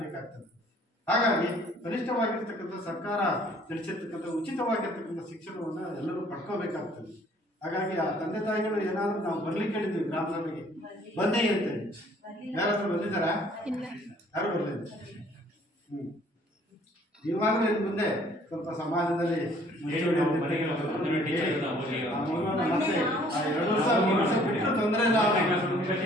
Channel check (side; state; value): both; normal; correlation 0.58